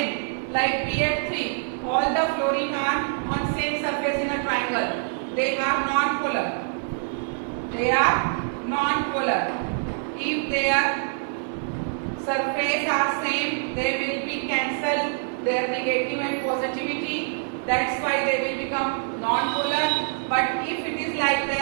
like PF3, all the fluorine are on same surface in a triangle, they are non-polar. They are non-polar. If their surface are same, they will be cancelled their negative and positivity. That's why they will become non-polar. But if it is like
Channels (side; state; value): left; silent; digital silence